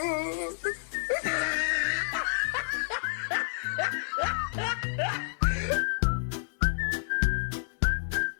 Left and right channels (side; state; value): right; silent; digital silence